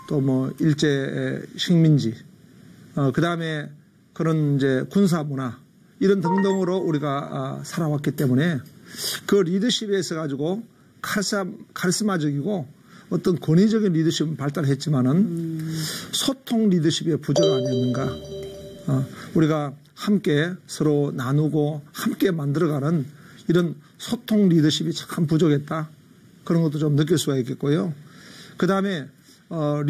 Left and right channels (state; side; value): identical; both; correlation 1.00